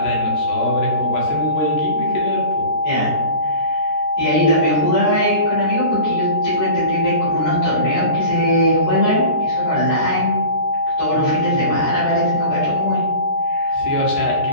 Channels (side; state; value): right; late; 13 ms